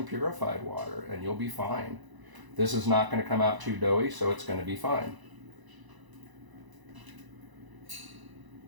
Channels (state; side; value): late; left; 1.0 ms